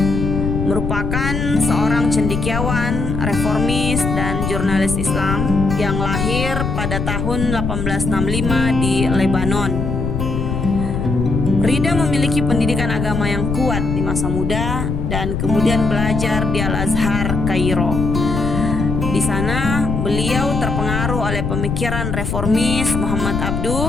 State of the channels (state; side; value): noise; left; rumble, 2 dB below the sound